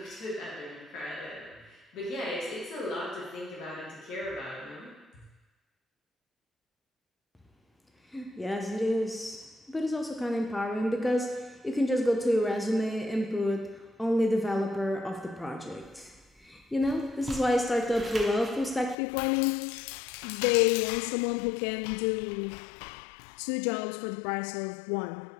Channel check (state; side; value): drops out; right; at 18.9 s